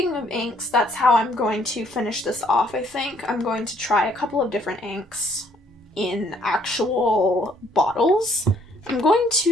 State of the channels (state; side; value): normal; both; correlation 0.65